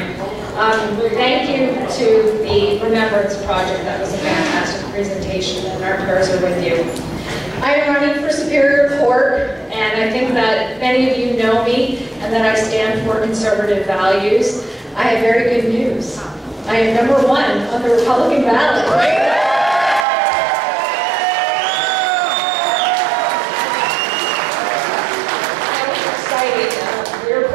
Thank you to the Remembrance Project. That was a fantastic presentation, and our prayers are with you. I am running for Superior Court, and I think that many of you know me, and that I stand for conservative values. I have very good news. I am #1 on the Republican ballot.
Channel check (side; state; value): left; drops out; at 20.1 s